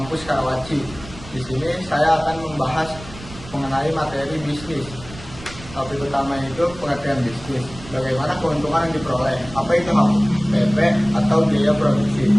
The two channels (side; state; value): right; noise; rumble, 16 dB below the sound